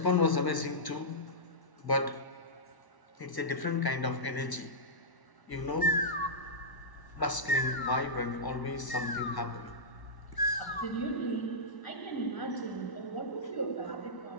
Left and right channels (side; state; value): right; late; 1.0 ms